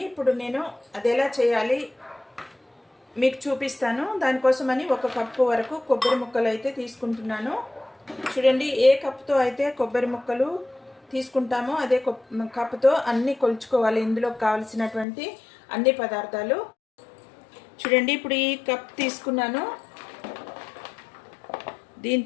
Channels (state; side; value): drops out; right; at 15.1 s